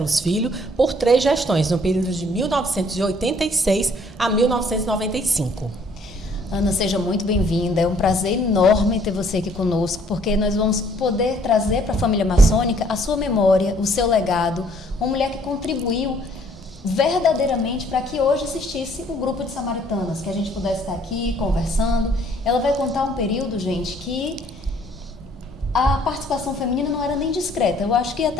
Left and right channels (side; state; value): both; normal; correlation 0.61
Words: Filho por 3 gestões, no período de 1986 a 1995. Ana, seja muito bem-vinda. É um prazer enorme ter você aqui conosco, porque nós vamos poder trazer para a família maçônica a sua memória, o seu legado, uma mulher que contribuiu verdadeiramente para que hoje existisse o grupo de samaritanas, que a gente pudesse estar aqui conversando. Ela vai contar um período, gente, que a participação feminina não era nem discreta, eu acho que